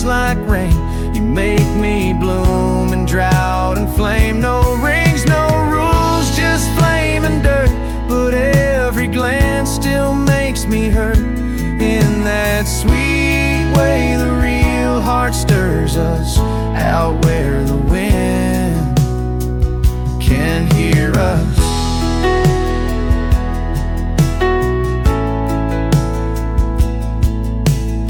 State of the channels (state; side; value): identical; both; correlation 1.00